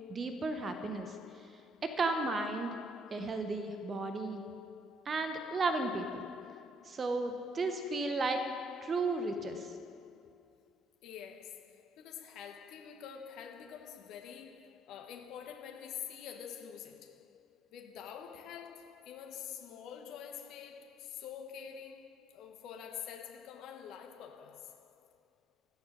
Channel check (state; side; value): normal; both; correlation 0.70